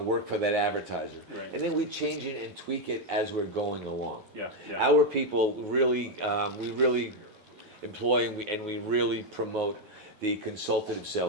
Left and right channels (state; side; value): late; left; 11 ms